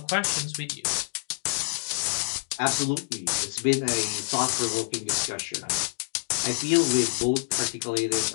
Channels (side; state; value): right; silent; digital silence